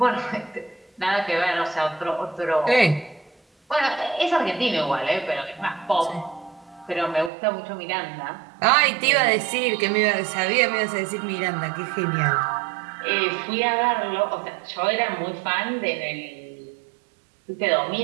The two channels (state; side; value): drops out; left; at 7.3 s